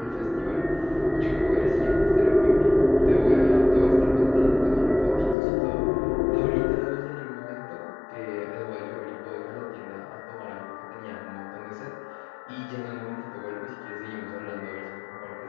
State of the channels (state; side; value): drops out; right; at 5.4 s